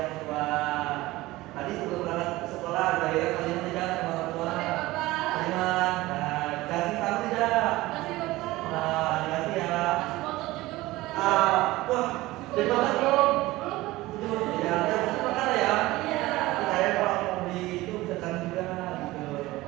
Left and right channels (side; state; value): left; quieter; 18.7 dB